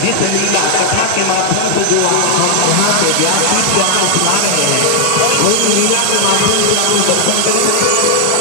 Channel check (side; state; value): both; different; correlation 0.00